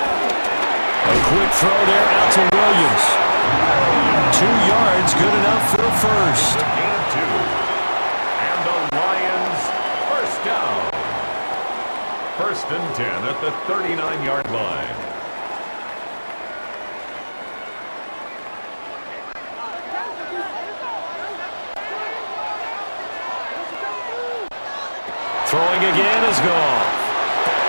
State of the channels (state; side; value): inverted; both; correlation -1.00